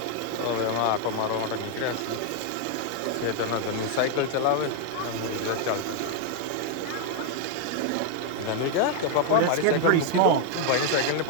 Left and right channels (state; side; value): different; both; correlation 0.00